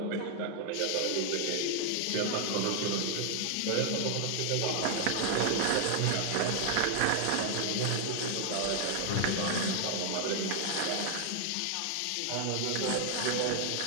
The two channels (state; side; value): different; both; correlation 0.00